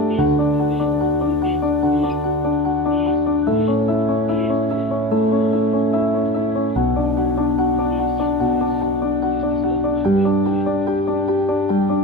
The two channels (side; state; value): both; normal; correlation 0.32